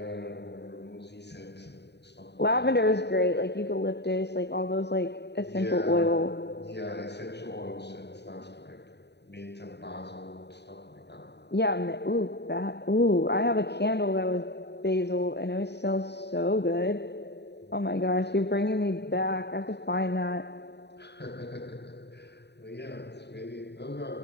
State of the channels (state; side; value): late; right; 0.49 ms